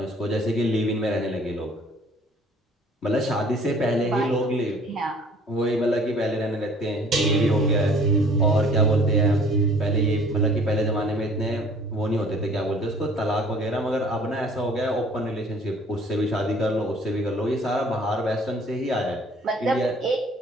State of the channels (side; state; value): both; normal; correlation 0.53